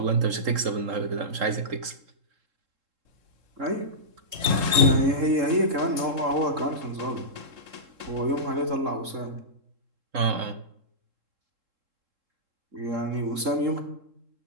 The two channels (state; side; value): late; left; 3.7 ms